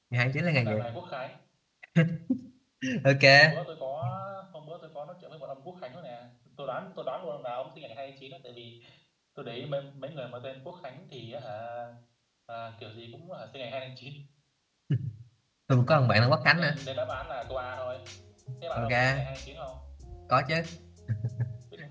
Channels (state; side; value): identical; both; correlation 1.00